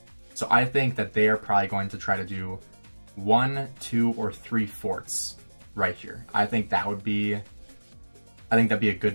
So I think that they are probably going to try to do 1, 2, or 3 forts right here. I think that'd be a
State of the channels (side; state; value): both; inverted; correlation -1.00